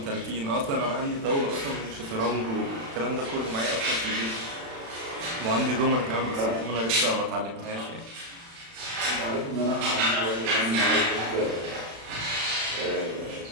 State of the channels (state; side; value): late; left; 36 ms